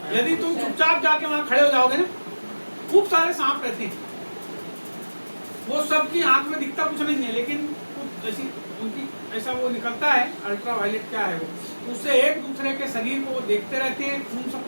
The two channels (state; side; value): inverted; both; correlation -1.00